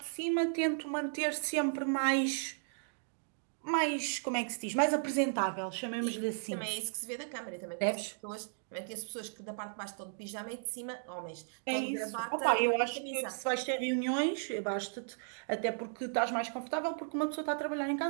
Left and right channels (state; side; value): silent; left; digital silence